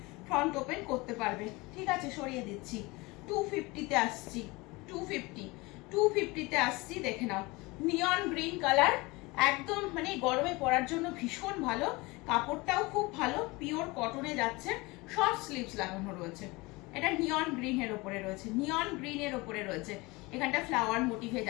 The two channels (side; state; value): right; quieter; 23.7 dB